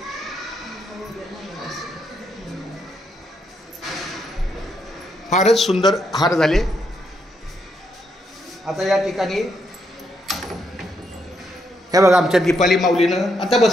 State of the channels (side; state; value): both; normal; correlation 0.77